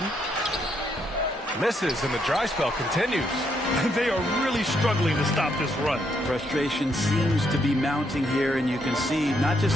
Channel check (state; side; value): normal; both; correlation 0.75